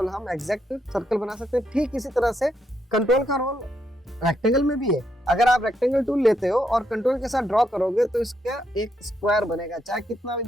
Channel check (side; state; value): both; normal; correlation 0.78